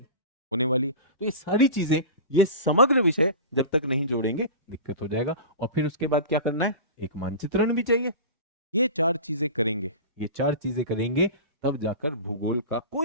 होने वाली। तो ये सारी चीजें, ये समग्र विषय जब तक नहीं जोड़ेंगे दिक्कत हो जाएगा। और फिर उसके बाद क्या करना है, एक मानचित्रण भी चाहिए। ये चार चीजें करेंगे, ये चार चीजें करेंगे, तब जाकर भूगोल का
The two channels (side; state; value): both; inverted; correlation -0.31